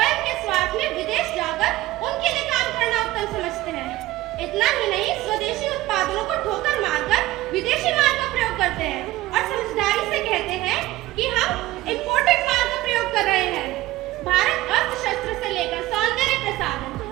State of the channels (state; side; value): quieter; left; 16.8 dB